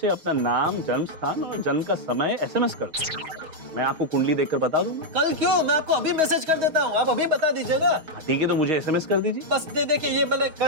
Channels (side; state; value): left; late; 6.3 ms